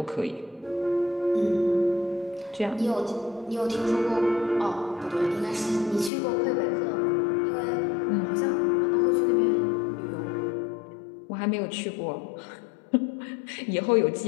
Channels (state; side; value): drops out; right; at 6.1 s